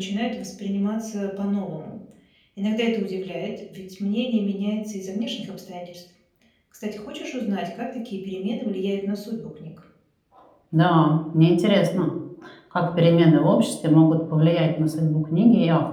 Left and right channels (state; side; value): identical; both; correlation 1.00